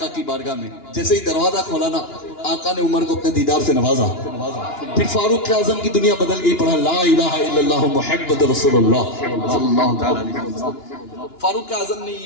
کی بارگاہ میں جیسے ہی دروازہ کھولا نا آقا نے عمر کو اپنے دیدار سے نوازا پھر فاروق اعظم کی دنیا بدل گئی پڑھا لا الہ الا اللہ محمد رسول اللہ صلی اللہ علیہ وسلم فاروق اعظم نے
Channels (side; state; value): right; late; 2.9 ms